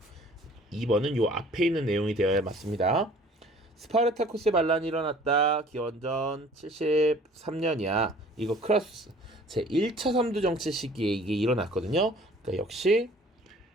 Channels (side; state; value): both; normal; correlation 0.51